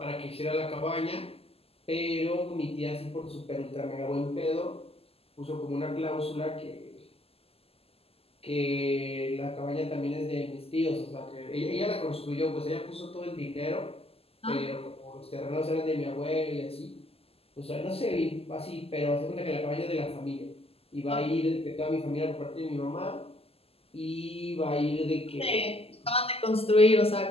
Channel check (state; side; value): late; right; 0.29 ms